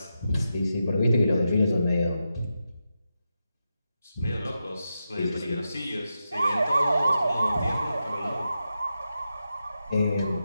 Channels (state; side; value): inverted; both; correlation -0.88